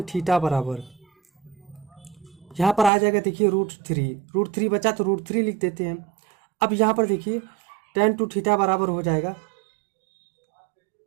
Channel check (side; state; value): left; drops out; at 2.9 s